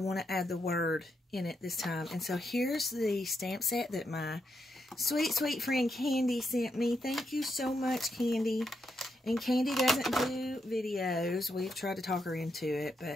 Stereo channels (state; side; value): normal; both; correlation 0.81